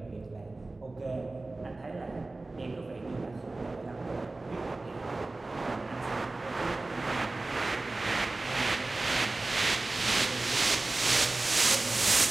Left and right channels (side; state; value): left; quieter; 3.1 dB